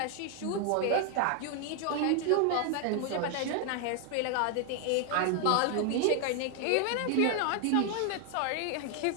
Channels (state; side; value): different; both; correlation 0.00